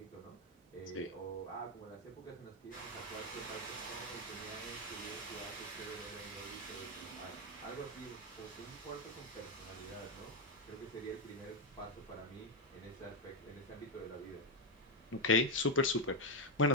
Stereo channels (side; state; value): both; normal; correlation 0.04